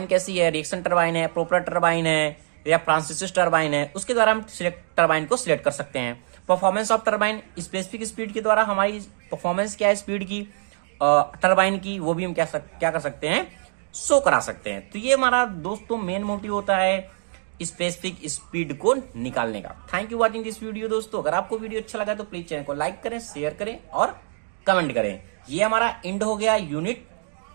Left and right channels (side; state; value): left; silent; digital silence